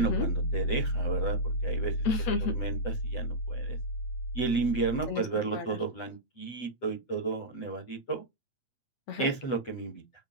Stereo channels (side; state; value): right; late; 7.8 ms